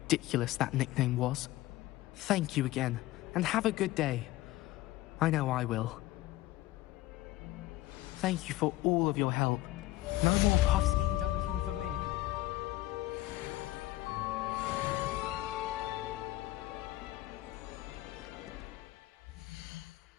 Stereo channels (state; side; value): quieter; right; 16.7 dB